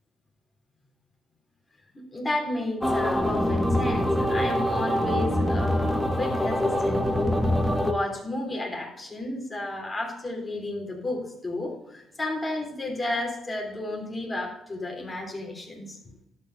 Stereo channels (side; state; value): both; normal; correlation 0.88